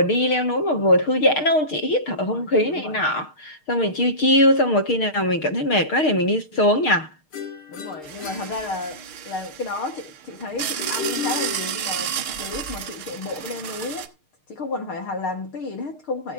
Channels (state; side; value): late; right; 6.5 ms